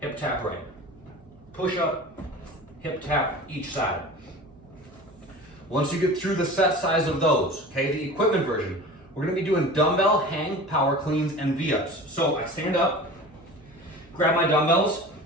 hip tap right. Push up, hip tap each side. Once you get through the set size of those, okay, the equipment version, we're gonna be doing dumbbell hang, power cleans, and V-ups. So I stand up, grab my dumbbells.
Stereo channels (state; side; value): noise; right; hum, 27 dB below the sound